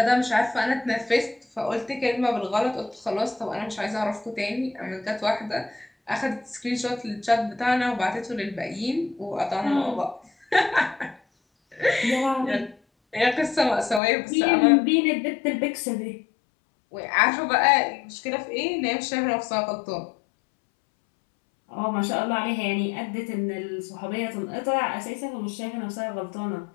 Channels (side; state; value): right; drops out; at 14.0 s